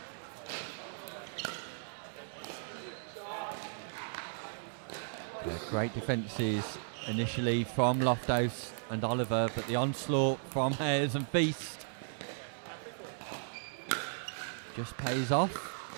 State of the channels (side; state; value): left; silent; 54 dB below the other